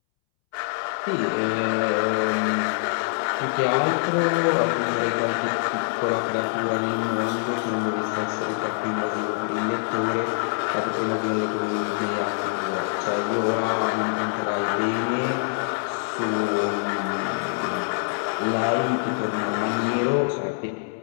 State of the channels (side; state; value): right; silent; 62 dB below the other